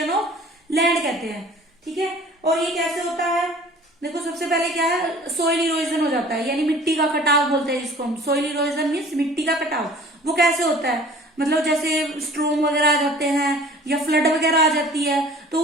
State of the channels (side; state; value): both; normal; correlation 0.48